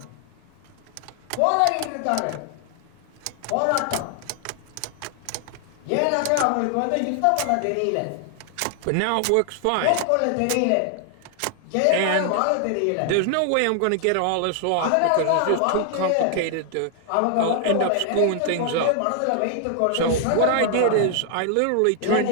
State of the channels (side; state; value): both; different; correlation 0.00